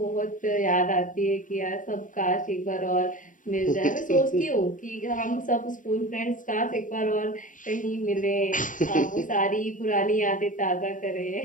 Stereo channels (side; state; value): right; late; 0.38 ms